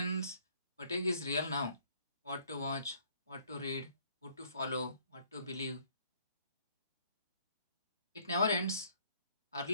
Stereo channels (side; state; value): both; inverted; correlation -0.63